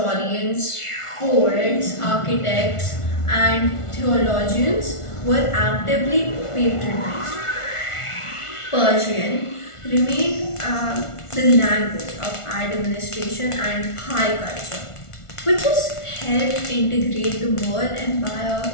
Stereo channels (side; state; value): right; late; 1.4 ms